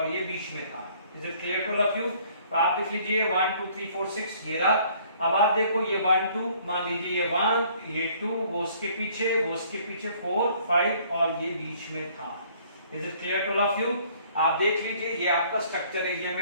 ये बीच में था। Is it clear to all of you? तो आप देख लीजिए 1 2 3 4 6 ये रहा। अब आप देखो ये 1 2, मान लीजिए ये 1, ये 2, वो उसके पीछे, वो उसके पीछे 4 5 और ये बीच में था। Is it clear to all of you? आप देख लीजिए ये आपका स्ट्रक्चर है, ये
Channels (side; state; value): both; inverted; correlation -0.59